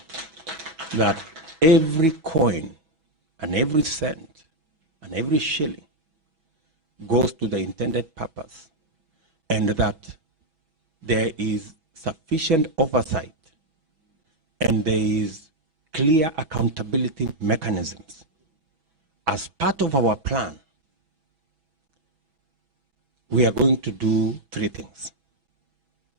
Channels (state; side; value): late; left; 6.1 ms